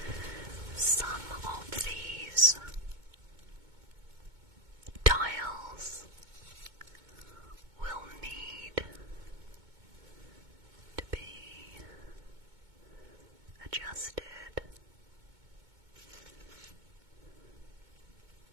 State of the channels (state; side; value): late; left; 2.2 ms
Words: Some of these dials will need to be adjusted.